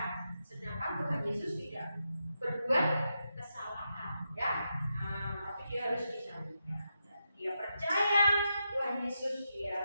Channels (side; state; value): both; inverted; correlation -0.86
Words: Sedangkan Tuhan Yesus tidak berbuat kesalahan, ya. Tapi dia harus disalibkan. Dia percaya Tuhan Yesus,